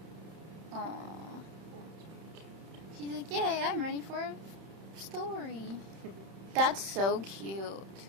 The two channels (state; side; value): late; left; 31 ms